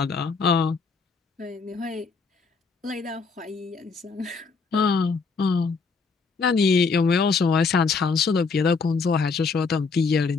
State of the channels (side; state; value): right; quieter; 4.7 dB